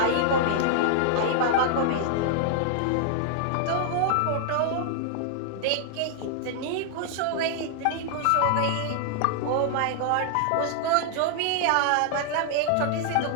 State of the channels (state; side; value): different; both; correlation -0.01